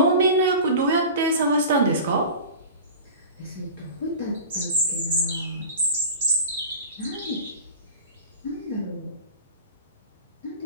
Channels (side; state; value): both; inverted; correlation -0.35